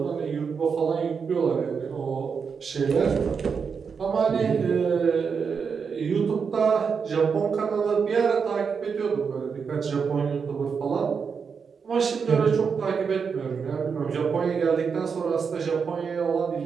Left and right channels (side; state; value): left; quieter; 6.0 dB